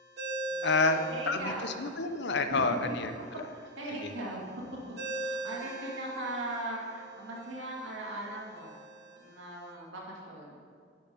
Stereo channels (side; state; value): both; normal; correlation -0.02